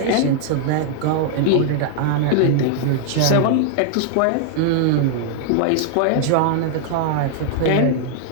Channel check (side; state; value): both; different; correlation 0.00